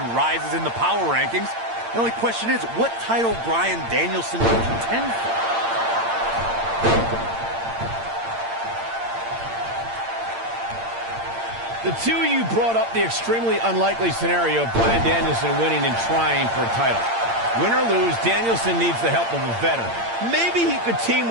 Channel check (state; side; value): late; left; 8.8 ms